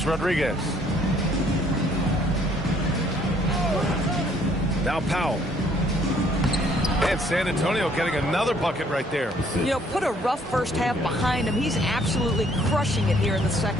Rodriguez. Now Powell. And San Antonio getting another bucket right there. You know, put a rough first half behind him. He's absolutely crushing it here in the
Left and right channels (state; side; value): normal; both; correlation 0.63